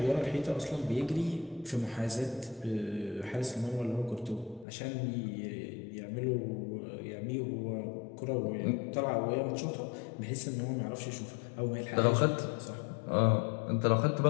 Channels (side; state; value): right; drops out; at 4.7 s